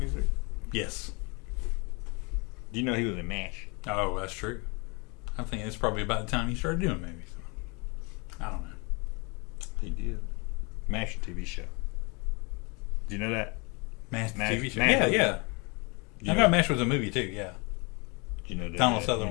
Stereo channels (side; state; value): right; quieter; 30.4 dB